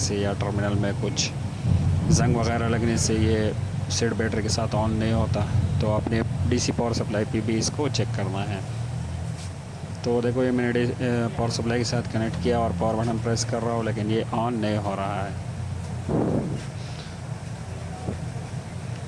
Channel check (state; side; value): identical; both; correlation 1.00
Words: या टर्मिनल में कुछ जंग वगैरह लगने से ये सेट बैटरी के साथ ऑन नहीं होता। तो आपने डीसी पावर सप्लाई पे भी इसको चेक करना है। तो देखो ये मैंने पावर सप्लाई के साथ कनेक्ट किया और पावर बटन प्रेस कर रहा हूँ लेकिन ये ऑन नहीं हो रहा है।